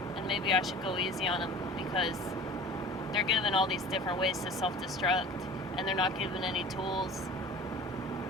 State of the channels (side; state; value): both; normal; correlation 0.41